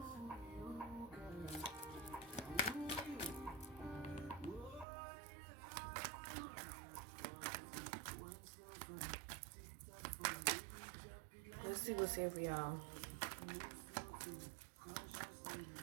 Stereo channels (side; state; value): left; drops out; at 4.9 s